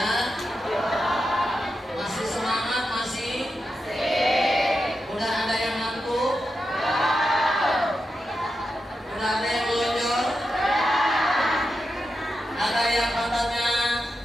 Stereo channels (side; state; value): both; normal; correlation 0.88